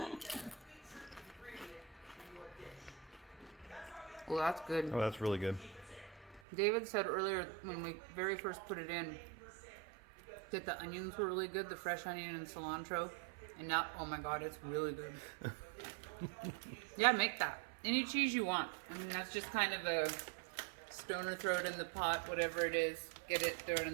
Well, that's good. Oh, that's really good. David said earlier when we very first put it in that the onions were really good, the fresh onion and cilantro. And now, oh my God, it's really good. Yeah, make that. Any cheese you want. I mean, that's just kind of a stoner, throw it in the pot, whatever it is. Get it, throw it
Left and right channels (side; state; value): left; drops out; at 6.4 s